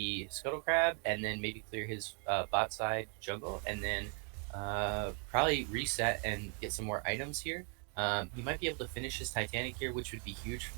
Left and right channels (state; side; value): quieter; left; 37.4 dB